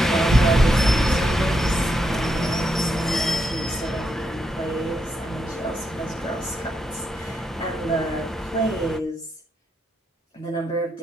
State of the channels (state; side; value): normal; both; correlation 0.81